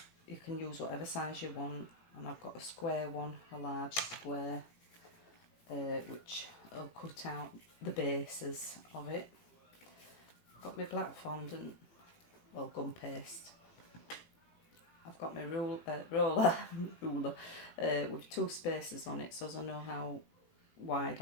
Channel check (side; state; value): right; late; 18 ms